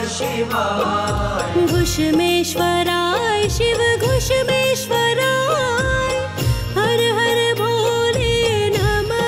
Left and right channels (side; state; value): both; identical; correlation 1.00